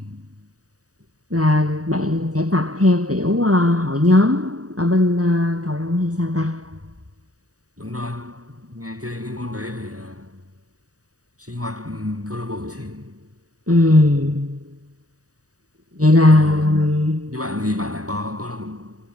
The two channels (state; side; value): late; left; 0.66 ms